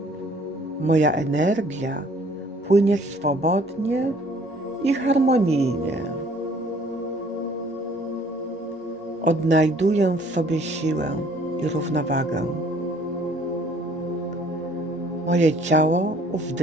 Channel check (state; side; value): normal; both; correlation 0.58